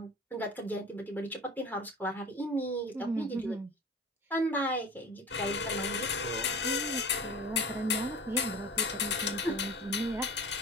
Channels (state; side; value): normal; both; correlation 0.37